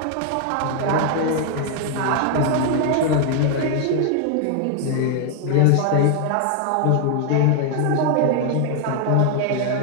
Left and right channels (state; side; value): different; both; correlation 0.00